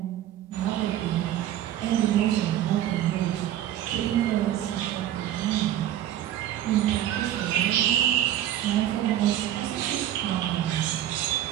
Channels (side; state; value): left; quieter; 12.1 dB